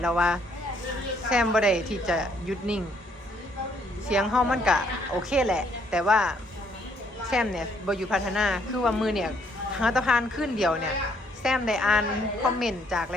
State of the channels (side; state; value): both; normal; correlation 0.68